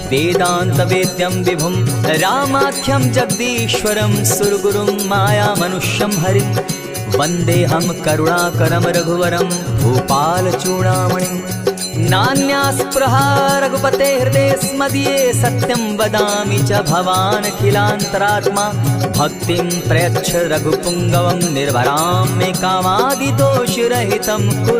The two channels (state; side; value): identical; both; correlation 1.00